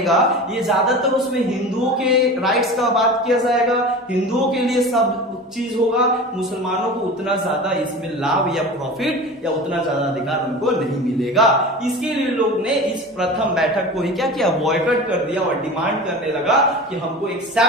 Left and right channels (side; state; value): both; normal; correlation 0.33